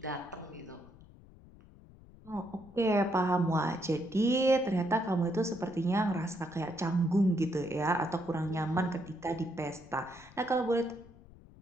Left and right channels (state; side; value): noise; left; rumble, 22 dB below the sound